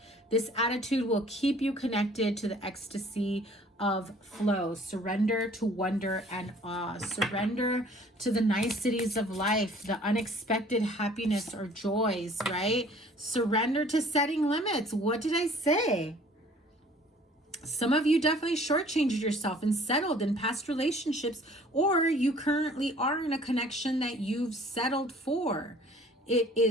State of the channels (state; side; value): normal; both; correlation 0.53